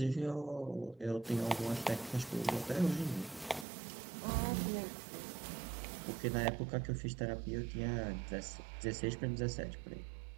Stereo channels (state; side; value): drops out; left; at 3.7 s